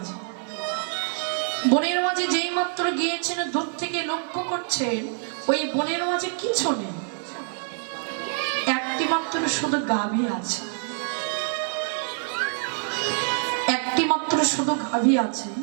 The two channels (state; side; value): silent; left; 60 dB below the other